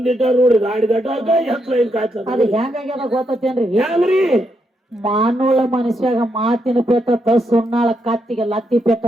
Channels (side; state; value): both; normal; correlation 0.80